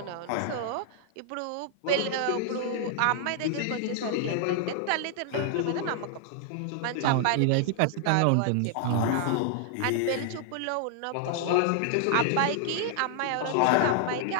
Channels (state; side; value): different; both; correlation 0.00